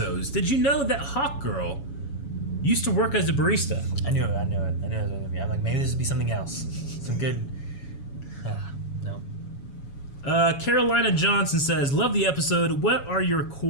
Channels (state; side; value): late; right; 7.1 ms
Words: did you know that Hawk Girl used to work as a barista? I knew it. I knew it was going to be. I'm like, maybe this would be something else. Some good... no. Carolina Johnson says, love the episode. What are your